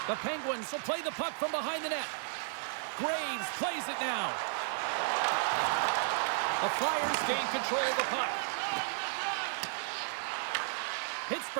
The Penguins will play the puck from behind the net. Graves plays it now. The Flyers gain control of the puck.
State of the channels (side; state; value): left; silent; digital silence